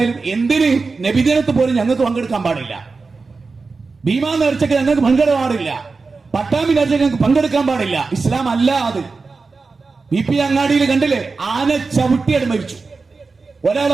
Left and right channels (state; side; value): quieter; left; 4.2 dB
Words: എന്തിന് നബിദിനത്ത് പോലും ഞങ്ങൾക്ക് പങ്കെടുക്കാൻ പാടില്ല. ഭീമാ നേർച്ചയ്ക്ക് ഞങ്ങൾക്ക് പങ്കെടുക്കാൻ പാടില്ല. പട്ടാമ്പി നേർച്ചയ്ക്ക് ഞങ്ങൾക്ക് പങ്കെടുക്കാൻ പാടില്ല. ഇസ്ലാം അല്ല അത്. BP അങ്ങാടിയിൽ കണ്ടില്ലേ, ആന ചവിട്ടിയത് മരിച്ചു.